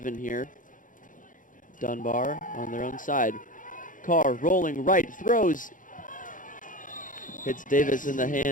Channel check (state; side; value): late; right; 0.38 ms